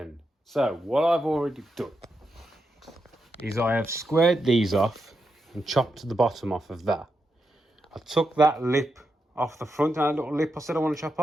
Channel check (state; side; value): normal; both; correlation 0.85